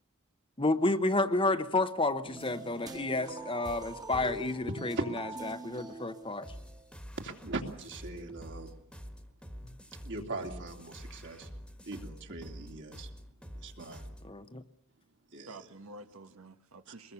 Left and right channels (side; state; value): both; normal; correlation 0.38